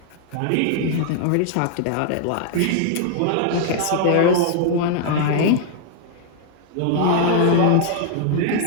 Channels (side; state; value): both; different; correlation -0.01